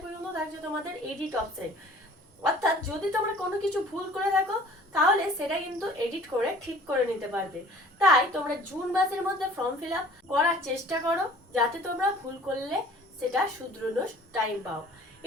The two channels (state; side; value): normal; both; correlation 0.50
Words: পর্যন্ত থাকছে তোমাদের এডিট অপশন। অর্থাৎ যদি তোমরা কোনো কিছু ভুল করে থাকো তাহলে সেটা কিন্তু এডিট করে ঠিক করে নিতে পারবে। তাই তোমরা জুন মাসের মধ্যে ফর্ম ফিল আপ করার চেষ্টা করো, যাতে তোমরা ভুল করলে সেটা শুধরানোর টাইম পাও।